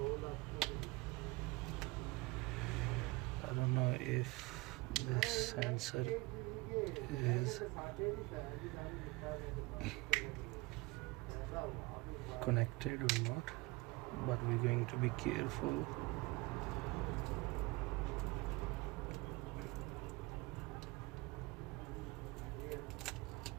I don't know if this sensor is connected or not, but we're going to be careful.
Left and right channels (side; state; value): left; quieter; 23.5 dB